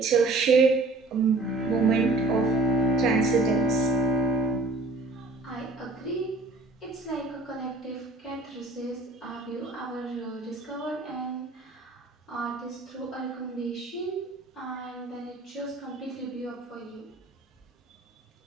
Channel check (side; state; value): left; quieter; 3.1 dB